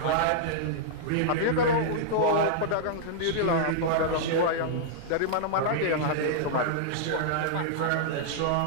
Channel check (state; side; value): different; both; correlation -0.02